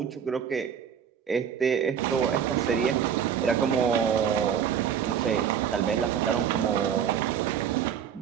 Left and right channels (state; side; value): quieter; left; 8.1 dB